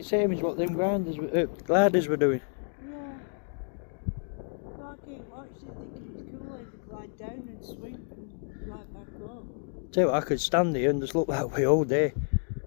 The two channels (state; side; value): silent; right; 58 dB below the other